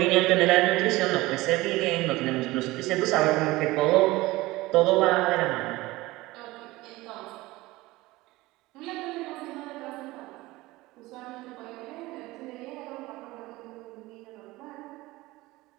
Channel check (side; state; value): left; quieter; 19.6 dB